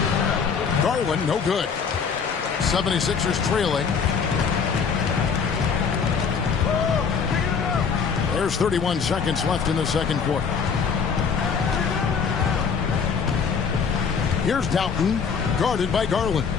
Garland, no good. 76ers trailing. There's 31 seconds left in the second quarter. Here's Doughton, guarded by Garland.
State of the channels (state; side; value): quieter; right; 6.1 dB